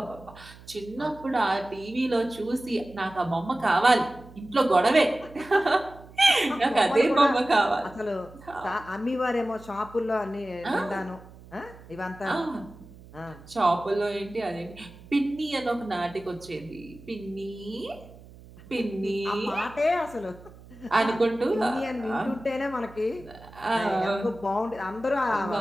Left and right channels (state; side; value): noise; right; hum, 20 dB below the sound